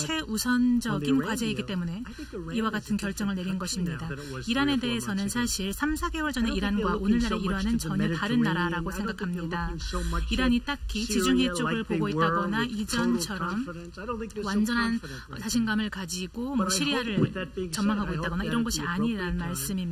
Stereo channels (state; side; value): identical; both; correlation 1.00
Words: 과제이기 때문에 이와 같은 결정을 내린 것입니다. 이란에 대해서는 사실 3, 4개월 전에 이란과 오늘날의 이란은 전혀 다른 나라라고 생각합니다. 이란이 딱히 지중해 쪽을 보고 있다거나 이전처럼 완전한 자신감을 가지고 시리아를 전망하고 있다거나 이런 것이 아니라는